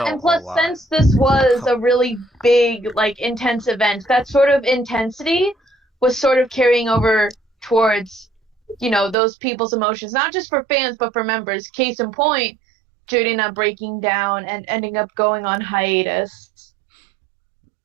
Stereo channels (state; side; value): drops out; left; at 9.2 s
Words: and a plus, lot. since this was a really big, like, intense event, that sort of intensity was sort of carrying over towards, those people's emotions, not just for fans, but for members. Case in point, Jurina breaking down and ending up going on hiatus.